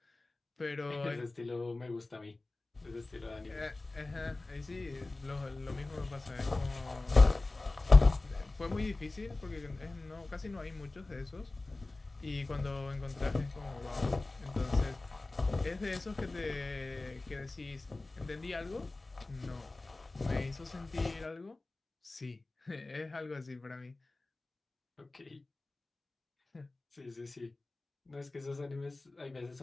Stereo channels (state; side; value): quieter; right; 3.1 dB